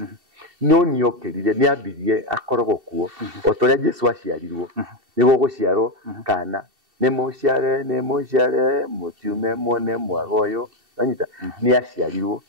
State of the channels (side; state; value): left; late; 2.7 ms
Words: no niokirire ni ambirie akorogwo kuo otoria Jesu aciarirwo niguo guciarwo kana ni muciare mutiume mone mwagoyo ranyita ni aciarirwo